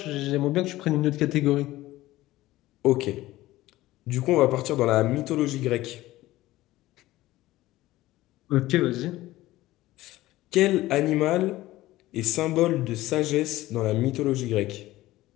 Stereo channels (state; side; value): quieter; right; 16.9 dB